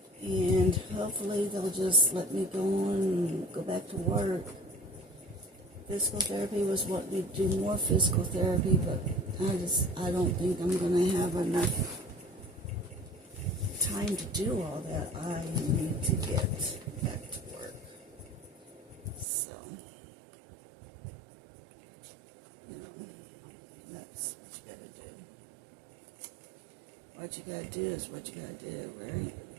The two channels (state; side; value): drops out; left; at 19.2 s